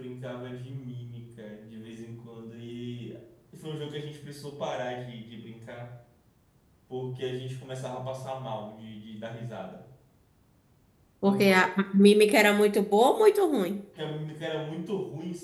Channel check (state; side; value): identical; both; correlation 1.00